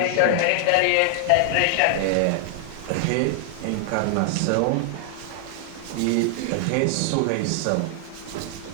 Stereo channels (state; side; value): different; both; correlation 0.00